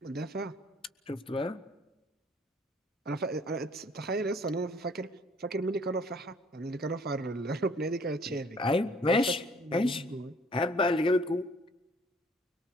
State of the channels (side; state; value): both; normal; correlation 0.58